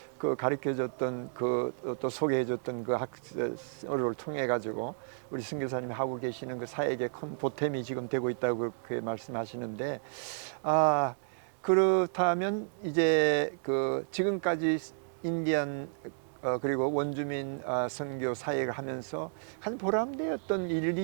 그 가르쳐줬던 또 소개해줬던 그 학설을 통해 가지고 우리 선교사님이 하고 계시는 그 사역의 큰 보탬이 지금 되고 있다고 그렇게 말씀하시는데 그렇다면 이제 그 지금까지 인디안 그리고 원주민 선교 사역을 하면서 한 보람되었던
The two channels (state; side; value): silent; left; digital silence